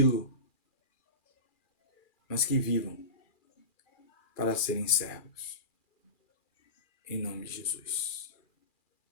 mas que vivam para serem servos. Em nome de Jesus.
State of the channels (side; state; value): right; late; 2.4 ms